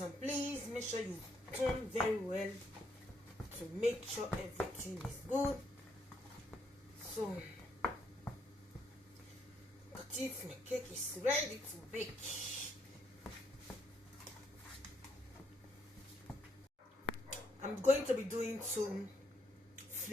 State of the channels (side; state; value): both; normal; correlation 0.74